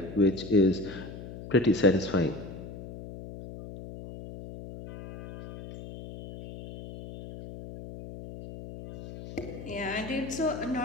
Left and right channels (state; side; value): noise; left; hum, 12 dB below the sound